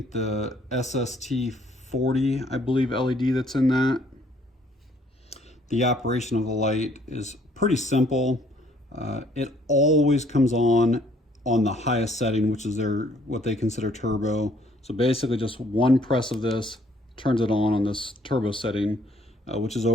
the SST40, I believe, LED that's in that. The operation of the light is pretty simple. It always comes on the highest setting, which is what they consider turbo. So basically just one press of this turns it on this turbo setting, which is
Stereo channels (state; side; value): normal; both; correlation 0.63